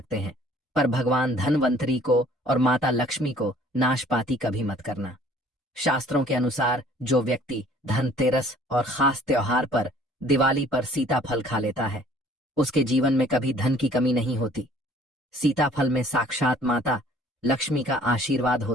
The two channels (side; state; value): both; normal; correlation 0.55